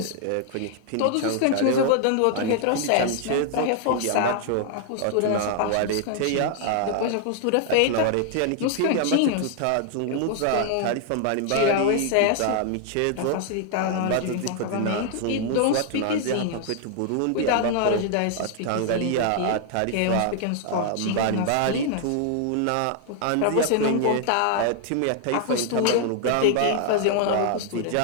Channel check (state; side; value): different; both; correlation 0.00